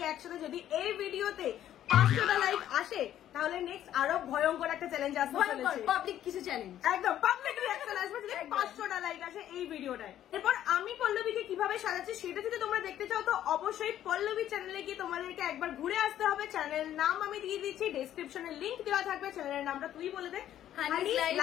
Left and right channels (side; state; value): right; quieter; 11.6 dB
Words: একসাথে। যদি এই ভিডিওতে 500টা লাইক আসে তাহলে নেক্সট আরো ভয়ঙ্কর একটা চ্যালেঞ্জ আসবে চলেছে। পাবলিক কিছু চ্যালেঞ্জ, একদম পাবলিক রিঅ্যাকশন আসবে যদি 500টা লাইক আসে এই ভিডিওটায়। এরপর আমি পল্লবীকে কিভাবে সাজাচ্ছি সেটা যদি তোমরা দেখতে চাও তো অবশ্যই পল্লবী চ্যানেলে গিয়ে তোমাদেরকে একবার ঘুরে আসতে হবে। চ্যানেল নাম আমি দিয়ে দিচ্ছি, ডেসক্রিপশনে লিংক দেওয়া থাকবে। চ্যানেলের নামটা তুই বলে দে। হানিস লাইভ